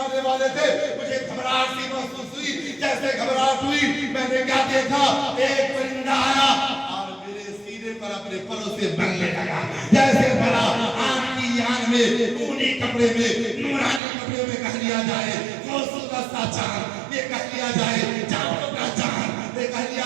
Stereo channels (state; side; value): drops out; left; at 14.0 s